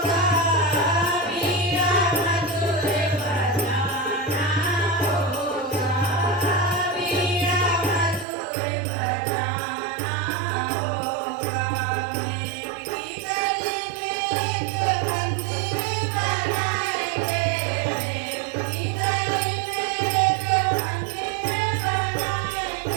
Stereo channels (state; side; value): drops out; left; at 8.2 s